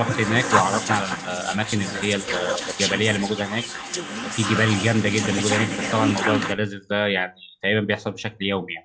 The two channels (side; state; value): both; identical; correlation 1.00